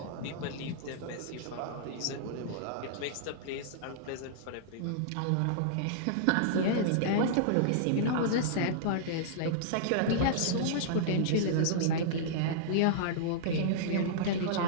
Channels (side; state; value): both; different; correlation -0.02